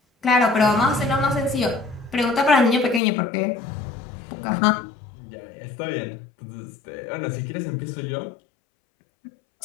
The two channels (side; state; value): right; drops out; at 3.0 s